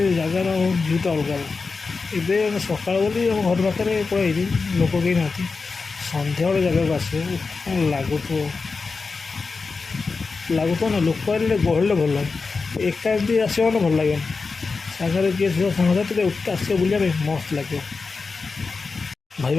ଜାଗାର ଭିଉଟା ଅଲଗା। ଏବେ ଆମେ ସକାଳ ବୋଲି ଆମ ଘର ପାଖରେ ପଳାଇଛୁ, ଲୋକ କେହି ନାହାନ୍ତି। ସନ୍ଧ୍ୟାବେଳେ ଜାଗାକୁ ଆସିବ କ'ଣ ଲାଗୁଥିବ ନା। ଲୋକ ଆସିଲେ ଗହଳିରେ ଭଲ ଲାଗେ, ଏକା ଏମିତି ଆସିବ ମାନେ ଭଲ ଲାଗିବନି। ସାଙ୍ଗରେ କିଏ ଥିବ ସାଙ୍ଗସାଥିରେ ଆସିବ ବୁଲିବା ପାଇଁ ମସ୍ତ ଲାଗିବ।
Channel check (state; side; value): quieter; right; 4.4 dB